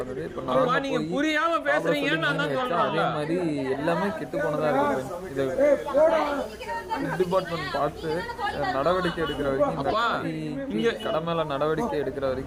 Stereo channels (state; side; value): identical; both; correlation 1.00